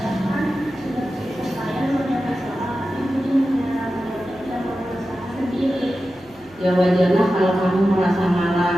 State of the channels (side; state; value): right; noise; hum, 28 dB below the sound